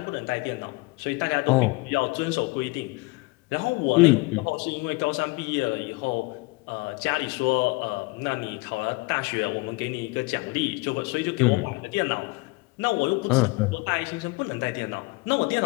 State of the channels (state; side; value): quieter; right; 25.1 dB